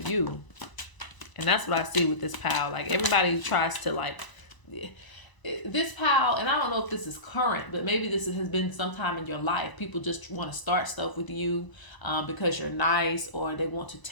And that's what I see with this pile. Like, everybody tries to, like, this pile, and I don't know if this is current, but maybe this has been sometime in your life. People just want to start stuff with you because you're nice, or they want to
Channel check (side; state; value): right; late; 1.0 ms